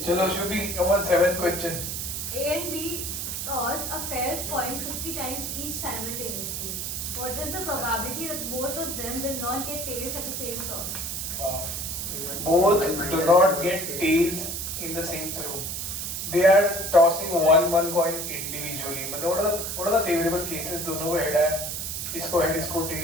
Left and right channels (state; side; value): noise; right; hiss, 4 dB below the sound